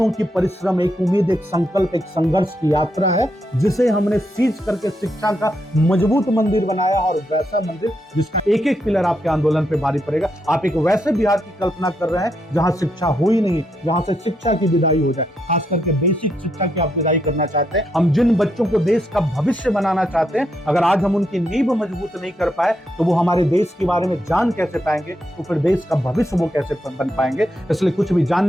की परिश्रम, एक उम्मीद, एक संकल्प, एक संघर्ष की यात्रा है जिसे हमने सीज करके शिक्षा का मजबूत मंदिर बनाया, और वैसा मंदिर जिसका एक एक पिलर आपके आंदोलन पे भारी पड़ेगा। आप एक वैसे बिहार की कल्पना कर रहे हैं जहां शिक्षा हो ही नहीं, जहां से शिक्षा की विदाई हो जाए, खास करके बेसिक शिक्षा की आप विदाई करना चाहते हैं। हम जिन बच्चों को देश का भविष्य बनाना चाहते हैं, अगर आज हम उनकी नींव मजबूत नहीं कर पाए तो वो हमारे देश के बारे में जान कैसे पाएंगे, तो फिर देश का भविष्य वो कैसे बन पाएंगे। इसलिए कुछ भी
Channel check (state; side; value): normal; both; correlation 0.80